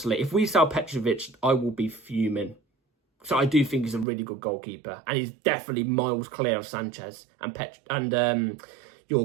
if we sell Petrovic, I will be fuming. So I do think he's a really good goalkeeper. And he's definitely miles clear of Sanchez and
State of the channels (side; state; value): left; drops out; at 4.0 s